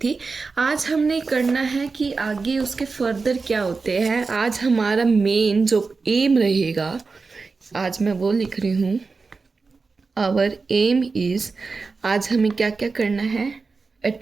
आज हमने करना है कि आगे उसके फर्दर क्या होते हैं। आज हमारा मेन जो एम रहेगा, आज मैं वो लिख रही हूँ, आवर एम इज़, आज हमें क्या क्या करना है।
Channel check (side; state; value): left; quieter; 4.3 dB